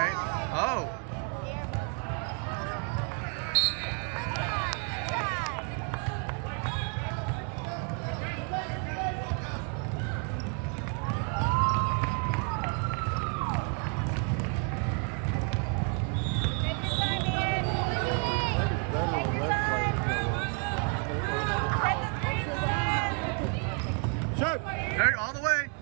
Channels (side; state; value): left; quieter; 37.0 dB